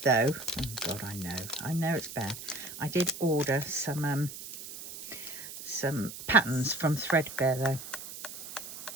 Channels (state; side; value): noise; right; hiss, 11 dB below the sound